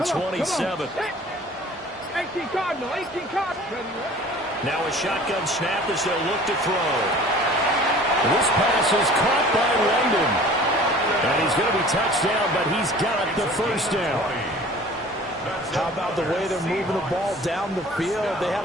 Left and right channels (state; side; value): normal; both; correlation 0.46